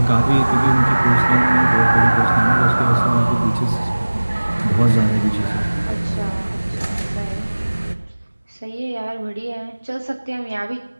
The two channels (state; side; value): inverted; both; correlation -1.00